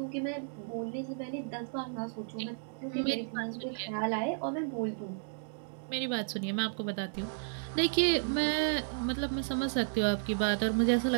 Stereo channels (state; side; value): silent; left; digital silence